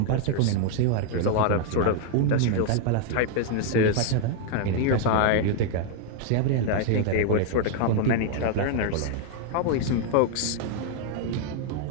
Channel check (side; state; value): both; different; correlation 0.00